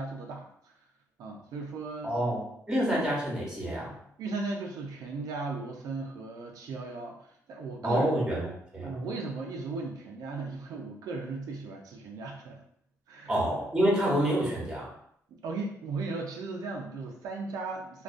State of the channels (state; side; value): normal; both; correlation 0.72